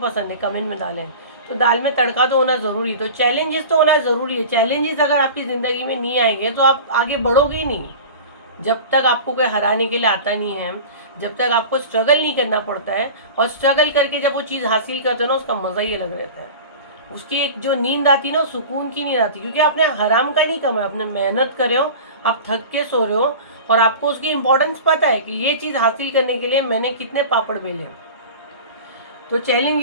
है? कमेंट में डालें। तो दाल में तड़का तो होना ज़रूरी, तो चैलेंजेस तो होना ज़रूरी है। चैलेंजेस अगर आपकी ज़िंदगी में नहीं आएंगे तो आप आगे बढ़ोगे ही नहीं। जब तक आपको कोई हराने के लिए आता नहीं है, जब तक आपको स्ट्रगल नहीं करना पड़ता है, और स्ट्रगल करके जब वो चीज़ हासिल करते हो ना, उसका मज़ा ही अलग रहता है। उसकी एक जो नींद आती है ना, सुकून की नींद आती है, क्योंकि आपने हराम का नहीं कमाया, आपने मेहनत करे हो, आप थक के सो रहे हो, और आपको उसकी इंपॉर्टेंस पता है कि ये चीज़ हासिल करने के लिए मैंने कितने पापड़ बेले। तो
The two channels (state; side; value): inverted; both; correlation -0.35